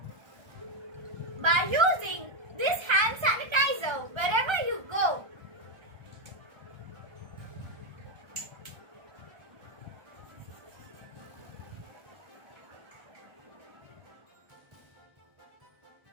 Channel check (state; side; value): late; left; 1.3 ms